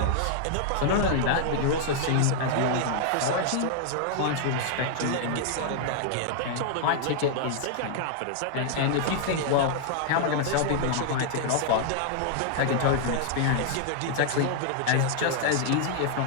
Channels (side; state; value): both; different; correlation -0.01